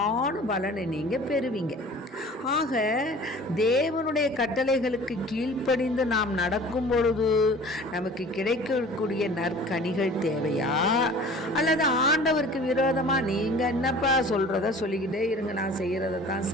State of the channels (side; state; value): both; normal; correlation 0.45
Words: பலனை நீங்கள் பெறுவீங்க. ஆக தேவனுடைய கட்டளைகளுக்கு கீழ்ப்படிந்து நாம் நடக்கும் பொழுது நமக்கு கிடைக்கக்கூடிய நற்கனிகள் தேவையா, அல்லது ஆண்டவருக்கு விரோதமாக நீங்கள் என்னப்பா சொல்கிறத சொல்லிக்கிட்டே இருங்க, நான் செய்கிறத தான்